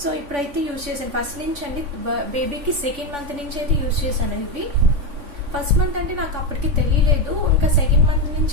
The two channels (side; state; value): left; late; 3.5 ms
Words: So ఇప్పుడైతే యూజ్ చేశాను. ఫస్ట్ నుంచి అండి, బేబీకి 2nd month నుంచి అయితే యూజ్ చేశాను. ఇవి ఫస్ట్ మంత్ అంటే నాకు అప్పటికి తెలియలేదు. ఇంకా 2nd month